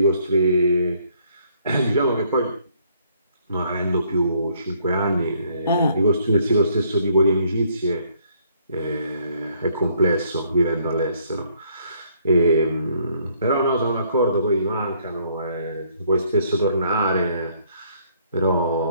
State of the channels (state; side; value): inverted; both; correlation -0.66